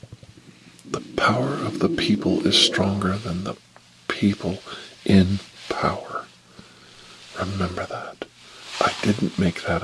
The power of the people is stronger than the people in power. Remember that. I didn't make that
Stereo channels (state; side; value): identical; both; correlation 1.00